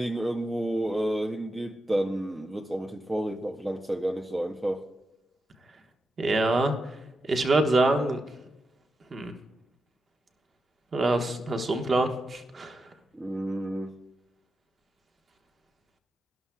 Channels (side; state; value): both; normal; correlation 0.88